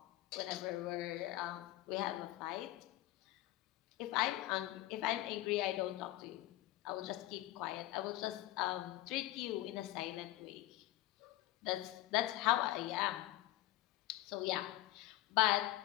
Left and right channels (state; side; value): quieter; right; 15.8 dB